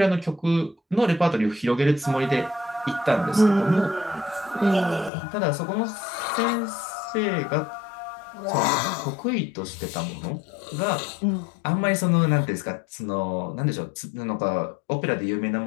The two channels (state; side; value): drops out; right; at 5.1 s